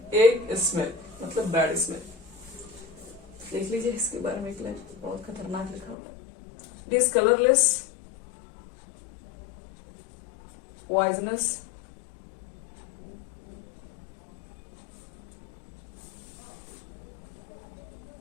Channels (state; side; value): drops out; right; at 6.0 s